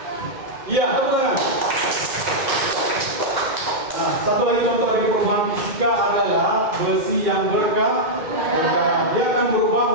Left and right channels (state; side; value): late; left; 2.1 ms